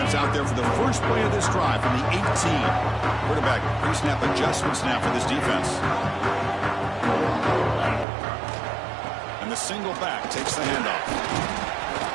out there for the first play of this drive from the 18. Quarterback pre-snap adjustments now for this defense. And the single back takes the handoff.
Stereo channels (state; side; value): drops out; left; at 8.1 s